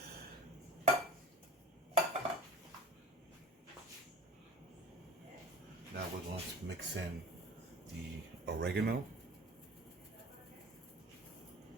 Now we're going to mix in the oregano.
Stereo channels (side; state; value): both; normal; correlation 0.42